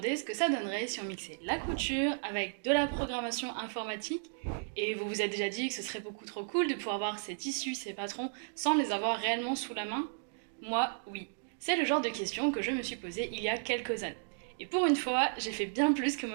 ce que ça donnerait si on mixait la couture avec de la programmation informatique et vous vous êtes déjà dit que ce serait beaucoup trop cool de pouvoir voir ces tissus, ces patrons sans les avoir réellement sous la main? Moi, oui. C'est le genre de questions que je me suis posée il y a quelques années. Et pour une fois, j'ai fait bien plus que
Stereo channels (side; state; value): left; silent; digital silence